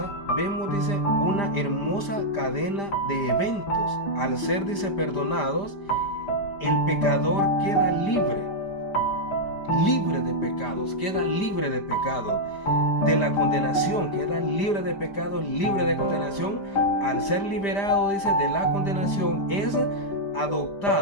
vemos, dice, una hermosa cadena de eventos. Al ser, dice, perdonados, el pecador queda libre de pecados, queda libre de pecado, de la condenación, queda libre de pecado, libre de condenación. Al ser liberado, dice, de la condenación, es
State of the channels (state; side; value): late; right; 5.0 ms